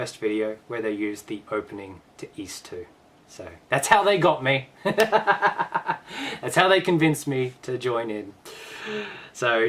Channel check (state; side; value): identical; both; correlation 1.00